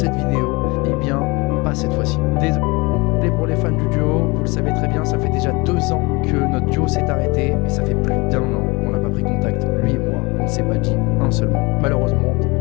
vidéo? Eh bien, pas cette fois-ci. Désolé pour les fans du duo, vous le savez très bien, ça fait déjà 2 ans que notre duo s'est arrêté, et ça fait plus d'1 an qu'on n'a pas pris contact, lui et moi, on ne s'est pas dit un seul mot. Malheureusement.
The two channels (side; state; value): right; quieter; 25.7 dB